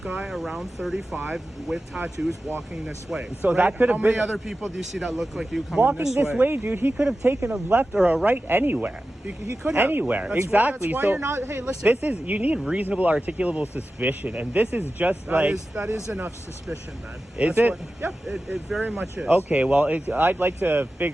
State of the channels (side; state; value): both; normal; correlation 0.94